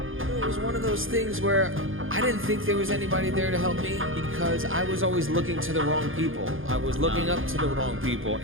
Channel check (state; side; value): late; left; 0.59 ms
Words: It was one of those things where I didn't think there was anybody there to help me because I was always looking to the wrong people. I was looking up to the wrong people.